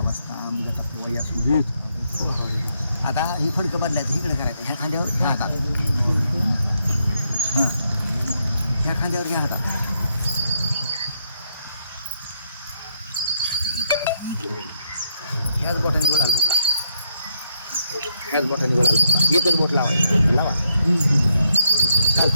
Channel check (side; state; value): both; inverted; correlation -0.77